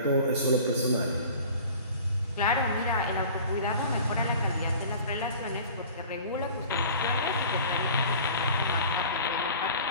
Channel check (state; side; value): inverted; both; correlation -0.43